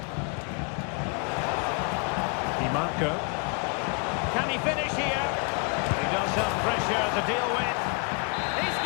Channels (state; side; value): quieter; right; 34.6 dB